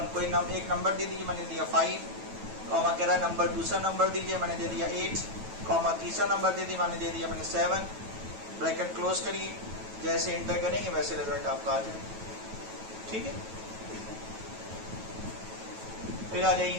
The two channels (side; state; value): left; late; 9.2 ms